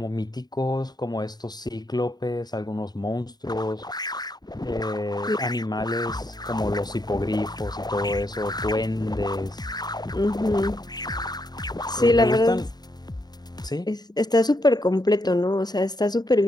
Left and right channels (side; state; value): right; late; 0.20 ms